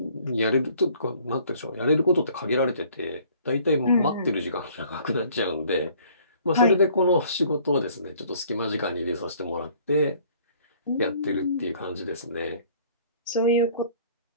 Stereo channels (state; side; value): inverted; both; correlation -0.56